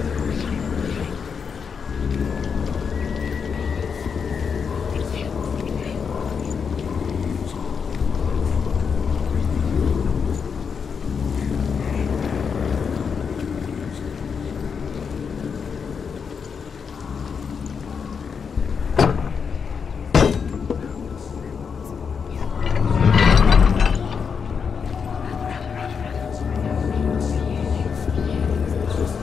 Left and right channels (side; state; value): right; quieter; 6.2 dB